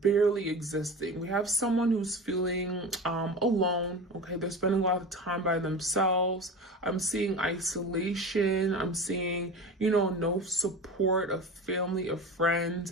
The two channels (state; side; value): normal; both; correlation 0.31